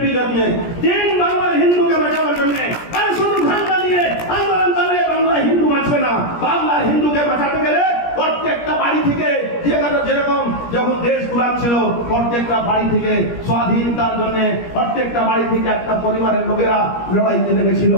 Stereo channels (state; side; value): late; right; 17 ms